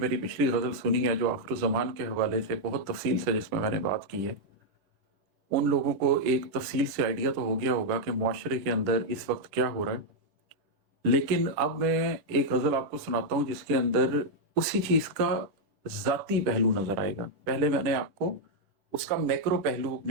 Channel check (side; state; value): left; late; 10 ms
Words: पिछली गज़ल सुनी है जो आखिरुज़्ज़मान के हवाले से बहुत तफ़सील से जिसमें मैंने बात की है, उन लोगों को एक तफ़सील से आइडिया तो हो गया होगा कि मुआशरे के अंदर इस वक़्त क्या हो रहा है। लेकिन अब मैं एक गज़ल आपको सुनाता हूँ जिसके अंदर उसी चीज़ का ज़ाती पहलू नज़र आएगा। पहले मैंने आपको उसका मैक्रो पहलू